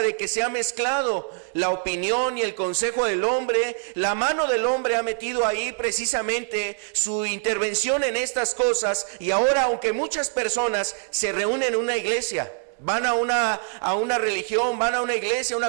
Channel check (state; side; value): silent; left; 62 dB below the other